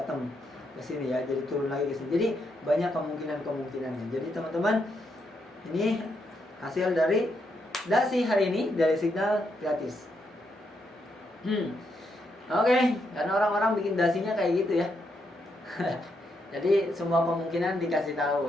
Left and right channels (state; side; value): normal; both; correlation 0.79